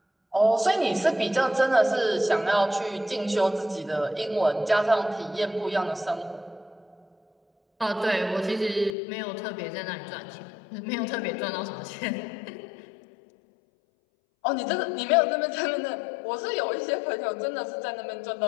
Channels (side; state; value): right; drops out; at 8.9 s